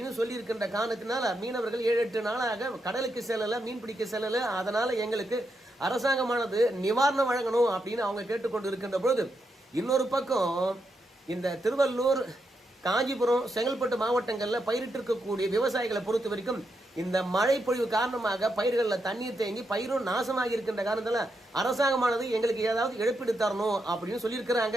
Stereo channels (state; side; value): normal; both; correlation 0.83